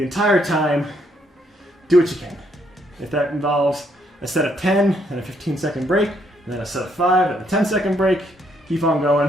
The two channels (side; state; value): both; normal; correlation 0.72